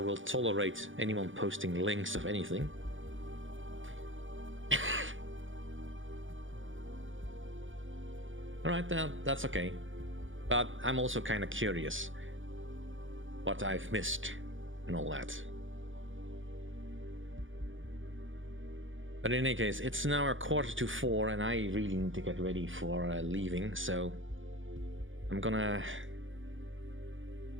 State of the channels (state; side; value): late; left; 0.57 ms